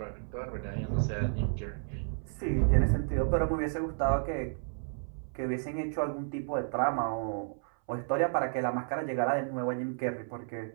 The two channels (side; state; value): left; silent; 56 dB below the other